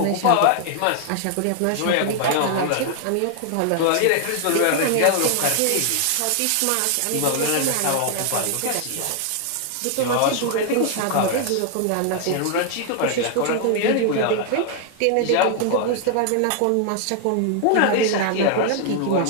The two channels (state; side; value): different; both; correlation 0.00